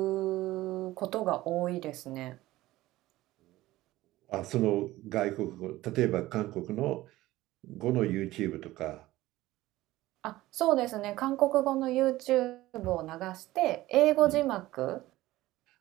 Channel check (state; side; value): quieter; left; 17.0 dB